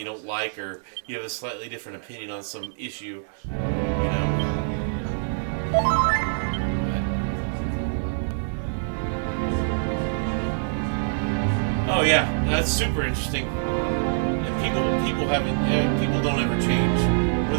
don't like, or you have a slightly different opinion on some issue. You know. Oh yeah, that's super interesting. And people don't ever change. We're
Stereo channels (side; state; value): left; silent; 62 dB below the other